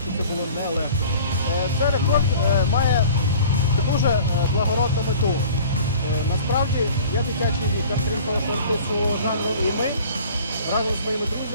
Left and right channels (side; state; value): both; inverted; correlation -0.46